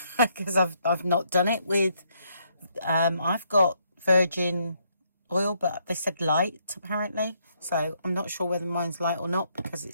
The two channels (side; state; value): both; inverted; correlation -0.73